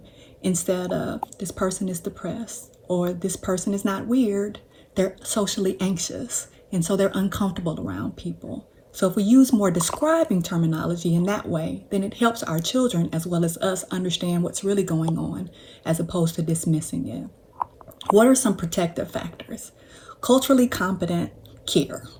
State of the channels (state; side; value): identical; both; correlation 1.00